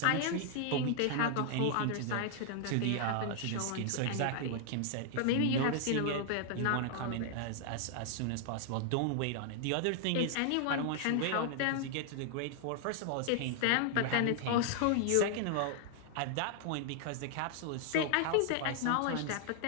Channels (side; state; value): both; different; correlation 0.00